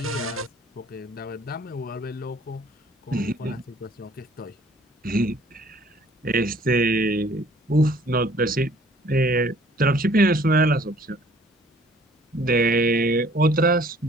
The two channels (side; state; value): both; normal; correlation 0.56